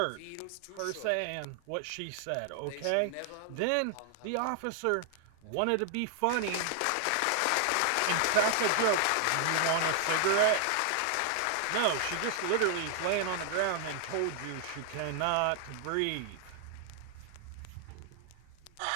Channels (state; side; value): different; both; correlation 0.00